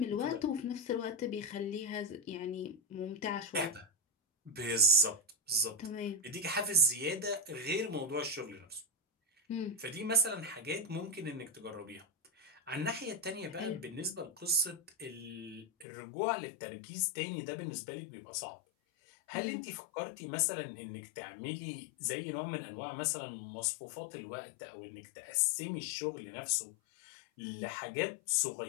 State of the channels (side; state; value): right; drops out; at 15.9 s